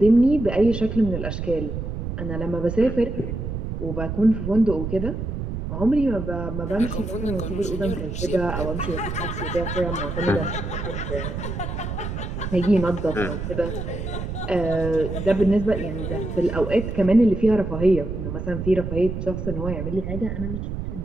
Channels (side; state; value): right; noise; rumble, 5 dB below the sound